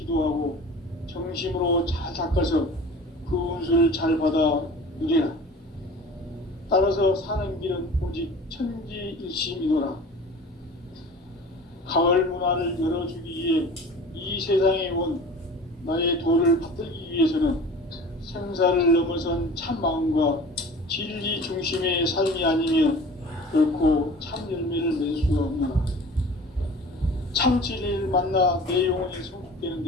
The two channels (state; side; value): normal; both; correlation 0.41